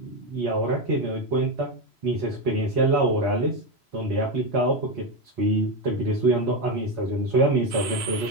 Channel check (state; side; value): late; left; 3.0 ms